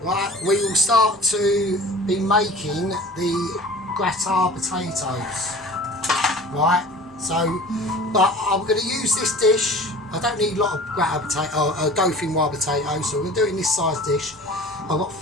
right, we will start to be making the gratin potatoes. Right, so but I'm going to use this dish. I don't need a lot of Dauphinoise potatoes, so we're doing this size dish. I've got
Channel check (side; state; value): both; normal; correlation 0.42